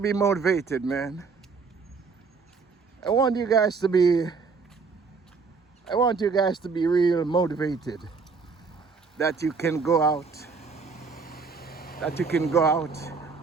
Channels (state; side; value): quieter; left; 4.9 dB